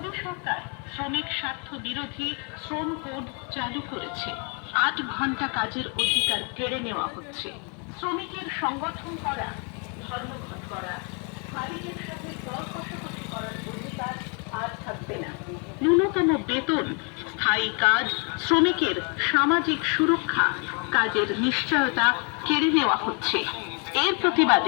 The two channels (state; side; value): quieter; right; 36.3 dB